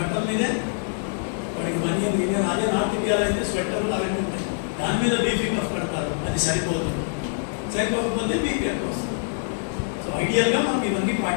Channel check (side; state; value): right; silent; digital silence